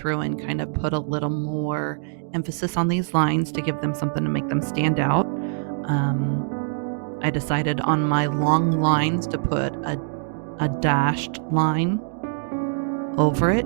and kind of put a little more emphasis on these lines to give them something to make them stand out. I decided on my long lines to put a dashed line over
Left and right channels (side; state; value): left; silent; digital silence